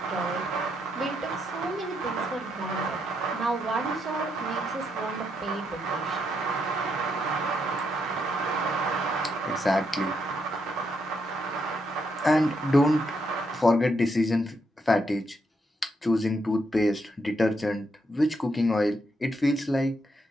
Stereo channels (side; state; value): both; normal; correlation 0.78